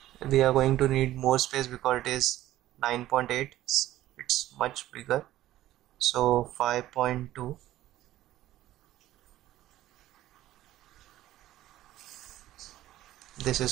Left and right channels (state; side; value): quieter; left; 14.5 dB